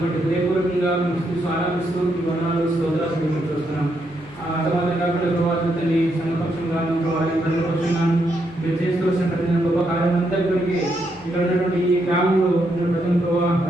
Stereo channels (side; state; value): left; noise; hum, 21 dB below the sound